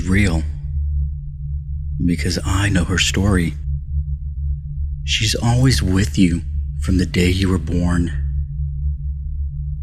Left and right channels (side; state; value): both; identical; correlation 1.00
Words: real. Because I know her story. She's always with you from the day you were born.